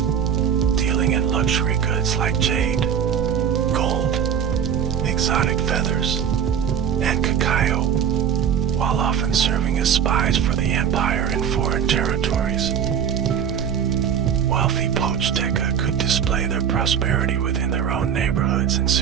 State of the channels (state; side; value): quieter; left; 8.2 dB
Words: dealing in luxury goods like jade, gold, exotic feathers, and cacao, while often serving as spies for the empire in foreign territories. Wealthy Pochteca could display their prosperity within their own neighborhoods and